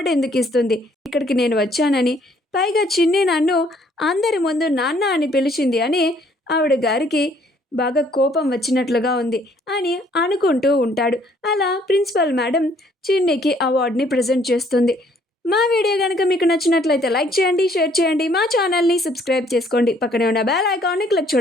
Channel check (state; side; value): normal; both; correlation 0.63